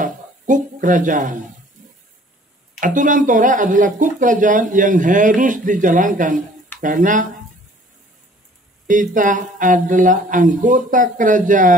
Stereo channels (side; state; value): both; normal; correlation 0.54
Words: Kuk kerajaan. Aturan Torah adalah kuk kerajaan yang harus dijalankan. Karena kita adalah anggota